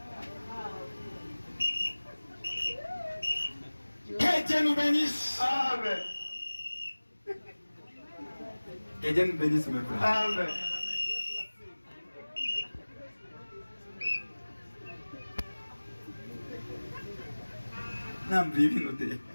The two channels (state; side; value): inverted; both; correlation -1.00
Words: Que Dieu nous bénisse. Amen. Que Dieu nous bénisse, mes frères. Amen.